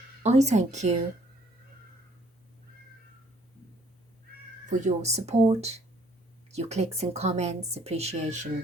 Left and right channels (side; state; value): both; normal; correlation 0.62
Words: I thank you for your support, your clicks and comments, appreciation,